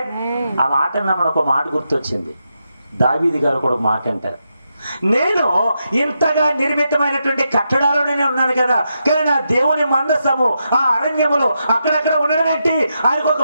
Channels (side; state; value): both; inverted; correlation -0.85